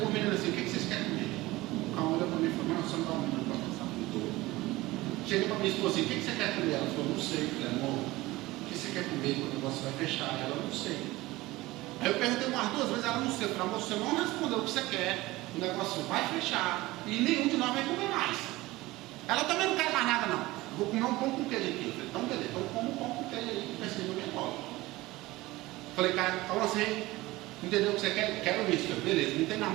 o menino assim: o que vocês querem comer? O cara olhou para mim e falou: não, você não está ouvindo para pensar muito. Cheguei para minha esposa assim: o que você quer comer? Ela falou: não sei. Eu falei: amor, o que você quer comer quando o negócio vai fechar? Ela: não sei. Aí eu perguntei umas duas vezes, ela: não sei. Eu falei: amor, você não respondeu o que você quer, o negócio vai fechar e nenhum de nós vai comer mais. Ela: também não quer mais nada não, vou comer um pão com queijo aqui. Eu falei: então beleza, então como um pão com queijo aí, que pensei no meu colo. Falei: cara, fala assim, entendeu o que você quer? Quero isso. Falei: beleza, não tem na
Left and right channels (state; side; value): quieter; left; 19.3 dB